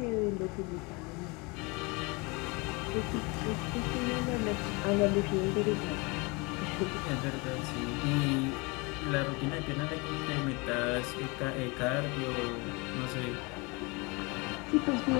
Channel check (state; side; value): quieter; right; 27.9 dB